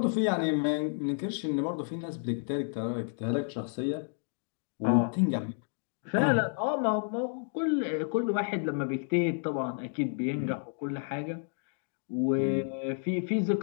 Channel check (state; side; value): silent; right; 57 dB below the other